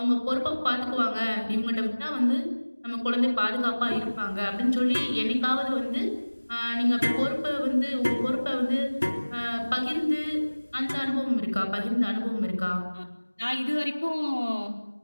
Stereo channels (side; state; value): both; inverted; correlation -1.00